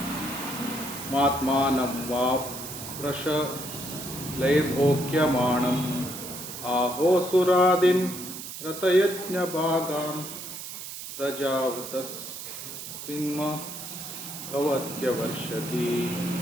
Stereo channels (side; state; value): right; noise; hiss, 9 dB below the sound